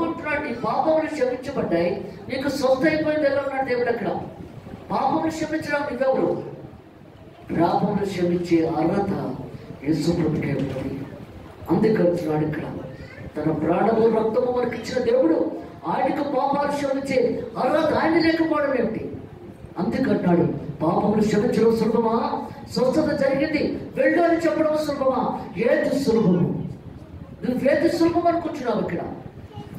అంటున్నాడు, నీ పాపములు క్షమించబడ్డాయి, నీకు స్వస్థ అయిపోయింది. ఎలా ఉన్నాడు దేవుడు అక్కడ. పాపములు క్షమించడం నువ్వెవరు? పాపములు క్షమించే అర్హత యేసు ప్రభుకే ఉంది. అందుకంటున్నాడు ఇక్కడ, తన ప్రాణము రక్తము మనకి ఇచ్చిన దేవుడు ఆయనకు పాపాలు క్షమించే అర్హత ఆయన లేకపోవడం ఏమిటి? అందుకంటున్నాడు, పాపములు క్షమించడం సులభమా? స్వస్థత జరిగింది వెళ్ళు అని చెప్పడం సులభమా? ఏది సులభము? నువ్వేది సులభం అనుకుంటున్నావు ఇక్కడ.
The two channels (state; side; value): identical; both; correlation 1.00